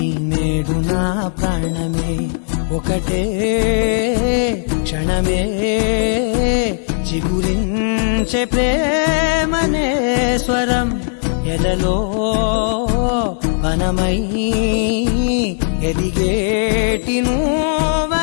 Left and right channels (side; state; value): right; silent; digital silence